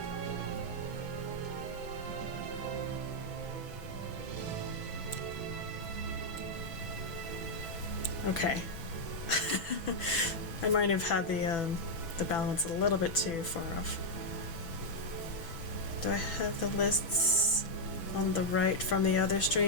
Okay. I might have had the balance a little bit too far off. Do I have the lists on the right from the other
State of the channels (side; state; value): right; late; 6.0 ms